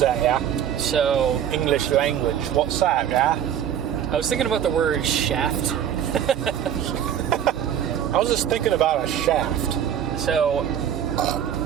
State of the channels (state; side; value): quieter; left; 9.7 dB